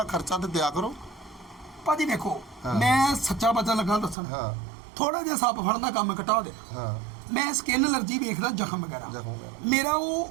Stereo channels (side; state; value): left; drops out; at 4.2 s